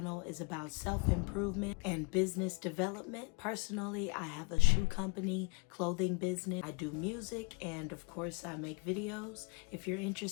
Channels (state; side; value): quieter; right; 31.6 dB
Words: is about self-improvement and business development. Personally, I have a shoe company, clothing business. I do music, and of course I make videos. If you're